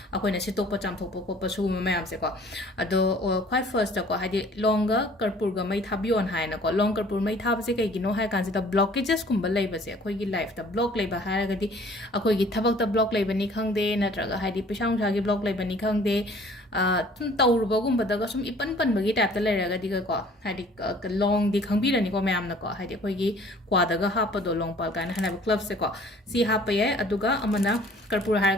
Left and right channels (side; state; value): both; normal; correlation 0.53